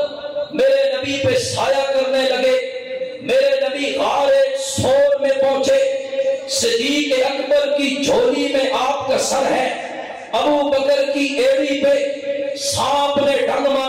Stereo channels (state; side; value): identical; both; correlation 1.00